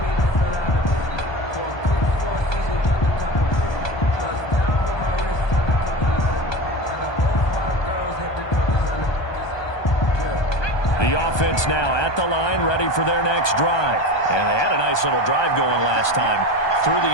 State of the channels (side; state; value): right; late; 1.2 ms